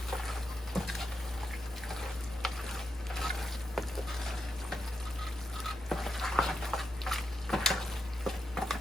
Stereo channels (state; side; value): normal; both; correlation 0.85